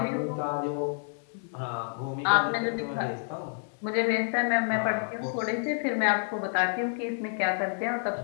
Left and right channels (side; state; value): right; silent; digital silence